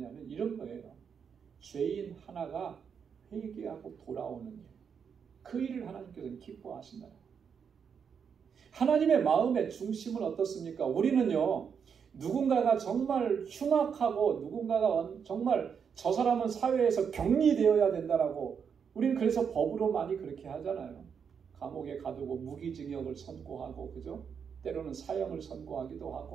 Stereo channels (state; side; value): quieter; left; 6.9 dB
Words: 이런 거예요. 죄인 하나가 회개하고 돌아오는 일. 그 일을 하나님께서는 기뻐하신다. 하나님의 마음의 중심은 어떻습니까? 우리는요, 누군가가 정말 흉악하고 누군가가 정말 저 사람은 사회에서 격리되어야 된다라고 우리는 그래서 법으로 많이 그렇게 하잖아요. 감옥에 가두고 무기징역을 선고하고, 그죠? 때로는 사형을 선고하기도